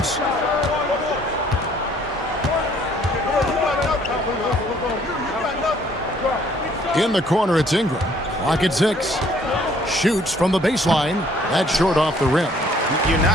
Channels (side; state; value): both; normal; correlation 0.61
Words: In the corner, it's Ingram. Clock at 6. Shoots from the baseline. That's short off the rim. You're